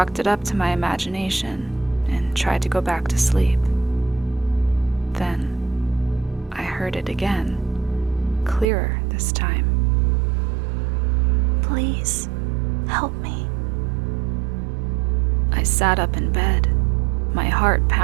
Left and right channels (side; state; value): left; drops out; at 8.7 s